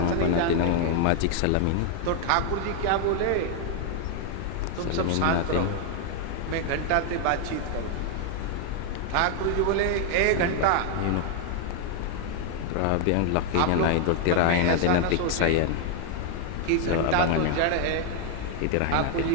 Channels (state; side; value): different; both; correlation 0.00